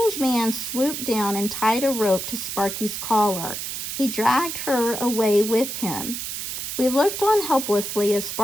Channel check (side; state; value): right; noise; hiss, 5 dB below the sound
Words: man swooped down and tied a rope to Sparky's collar. He dragged her away with him. We looked on helplessly as